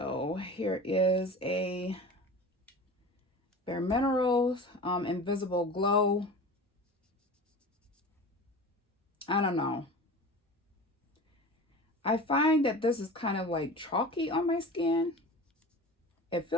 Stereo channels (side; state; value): both; normal; correlation 0.35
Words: here is a Bare Minerals Invisible Glow. I don't know. I find that this is kind of like chalky on my skin. It